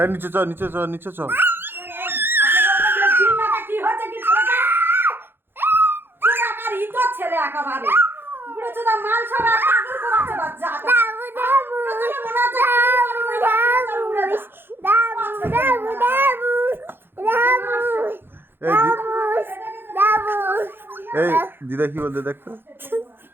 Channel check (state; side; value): late; left; 0.10 ms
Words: নিচে চ নিচে চ নিচে চ কি হচ্ছে কি ছেলেটা? কোন আকার ইতো ছেলে একেবারে বুড়ো চোদা মাল সব পাগল করাচ্ছে বাচ্চা দাবু দাবু দাবু দাবু দাবু এই দিদা কি বলতে দেখতো